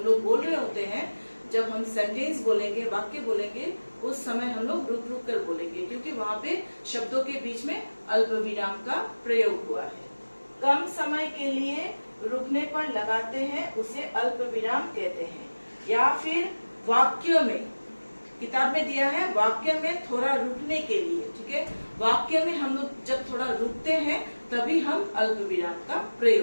लोग बोल रहे होते हैं, जब हम सेंटेंस बोलेंगे, वाक्य बोलेंगे, उस समय हम लोग रुक रुक कर बोलेंगे, क्योंकि वहाँ पे शब्दों के बीच में अल्प विराम का प्रयोग हुआ है। कम समय के लिए रुकने पर लगाते हैं, उसे अल्प विराम कहते हैं। या फिर वाक्यों में, किताब में दिया है वाक्य में थोड़ा रुकने के लिए। ठीक है, वाक्य में हम लोग जब थोड़ा रुकते हैं तभी हम अल्प विराम का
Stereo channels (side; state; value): both; inverted; correlation -1.00